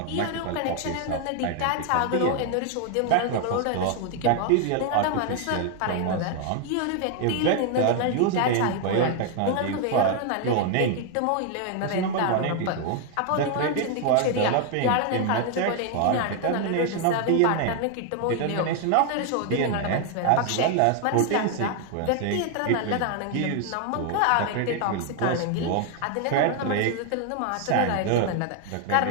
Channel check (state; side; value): different; both; correlation 0.00